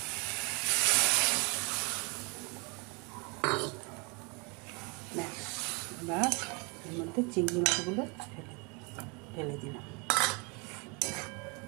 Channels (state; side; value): quieter; left; 31.0 dB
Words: ব্যাস, এবার এর মধ্যে চিংড়ি মাছগুলো ঢেলে দিলাম।